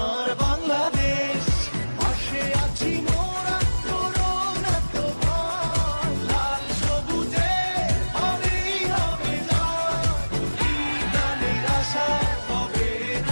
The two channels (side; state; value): both; inverted; correlation -1.00